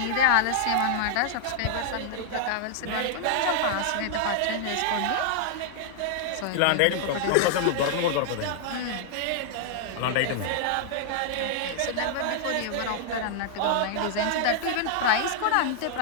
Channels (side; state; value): both; different; correlation -0.01